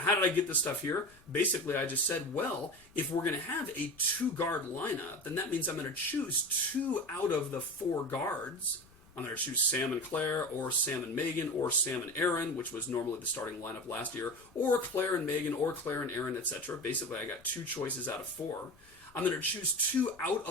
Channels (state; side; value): noise; left; rumble, 28 dB below the sound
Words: did I get this stuff here? Basically, I just said, well, if we're going to have a 2-guard lineup, then that means I'm going to choose 2 out of the 4 guards. I'm going to choose Sam and Claire, or Sam and Megan, or Sam and Aaron, which was normally the starting lineup last year, or Claire and Megan, or Claire and Aaron, etc. Basically, I got 2 choices out of 4. I'm going to choose 2 out